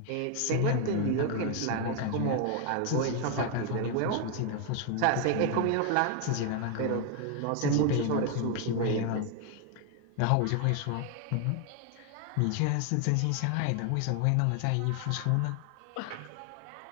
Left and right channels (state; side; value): different; both; correlation 0.00